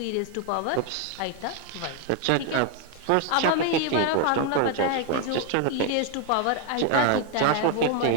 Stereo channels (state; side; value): different; both; correlation 0.01